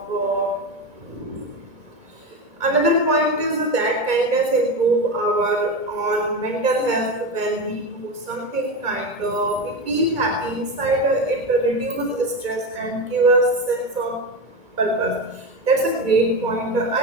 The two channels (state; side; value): late; left; 2.2 ms